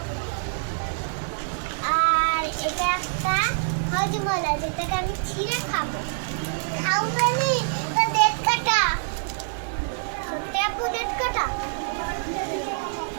আর এটা একটা হজমলা যেটাকে আমি ছিঁড়ে খাবো। খাওয়ানি তো দেখ কাটা। সত্যি আপু দেখ কাটা।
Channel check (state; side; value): silent; left; digital silence